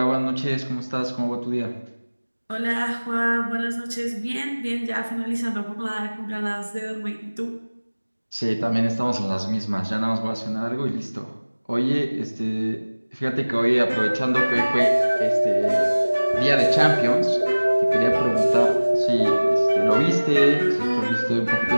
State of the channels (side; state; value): both; inverted; correlation -1.00